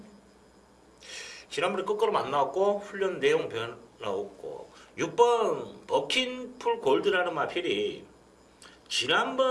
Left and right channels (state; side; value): identical; both; correlation 1.00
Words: 지난번에 끝걸음 안 나왔고 훈련 내용 변화 없고 6번 버킨풀 골드라는 마필이